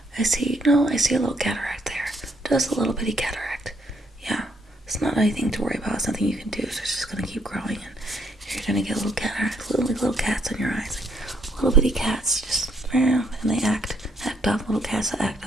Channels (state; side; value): normal; both; correlation 0.70